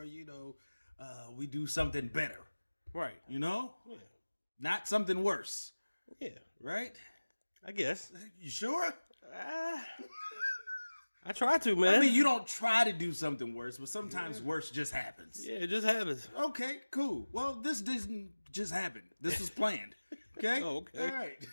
we do something better. Right. You know? Yeah. Not something worse. Yeah. Right? I guess. You sure? I try to, man. I mean, you don't try to do something worse, but sometimes worse just happens. Yeah, it just happens. Okay, cool. Well, this didn't just happen. This was planned. Okay? Oh, okay. All right.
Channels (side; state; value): both; inverted; correlation -1.00